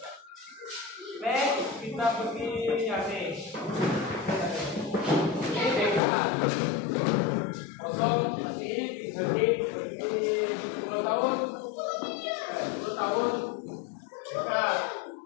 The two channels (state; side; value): drops out; right; at 6.0 s